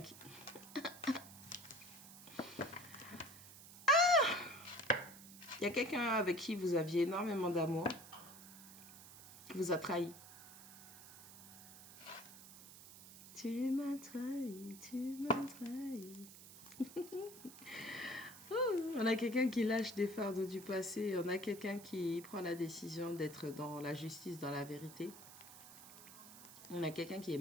qui... Il y a quelqu'un avec qui vous aviez énormément d'amour, qui vous a trahi. Tu m'as trahi, tu m'as trahi. On a quelqu'un qui lâche des fardeaux du passé. On a quelqu'un qui prend la décision d'être dans la justice, dans la vérité. On a quelqu'un qui est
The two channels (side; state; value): right; noise; hiss, 16 dB below the sound